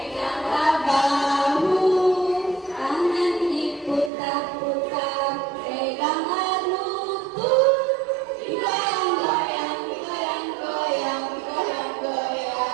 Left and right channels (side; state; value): left; drops out; at 4.1 s